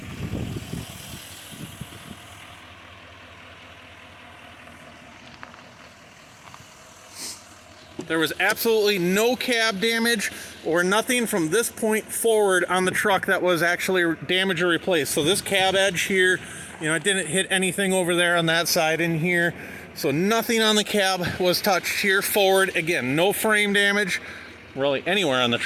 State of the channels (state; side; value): identical; both; correlation 1.00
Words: There was absolutely no cab damage or nothing from this point forward on the truck that was actually damaged or replaced. So this cab edge here, it didn't hit anything over there on that side in here. So nothing on the cab was touched here forward. Again, no frame damage really anywhere on the